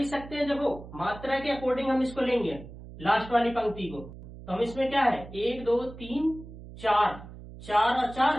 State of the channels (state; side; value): noise; right; hum, 15 dB below the sound